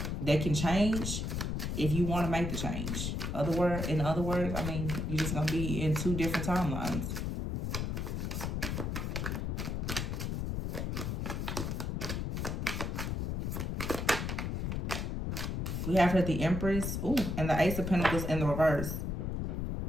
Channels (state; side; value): noise; left; rumble, 2 dB below the sound